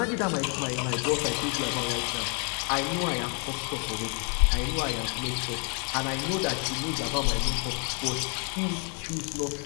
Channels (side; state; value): right; quieter; 37.9 dB